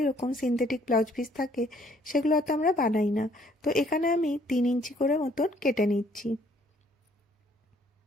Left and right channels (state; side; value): normal; both; correlation 0.63